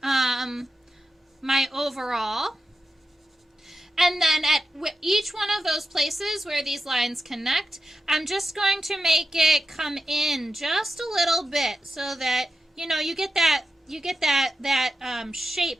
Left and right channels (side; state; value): both; normal; correlation 0.89